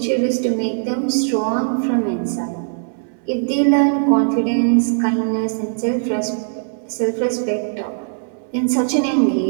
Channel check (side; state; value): left; silent; digital silence